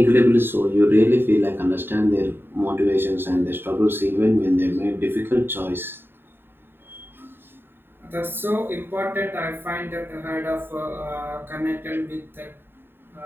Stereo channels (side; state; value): left; late; 0.10 ms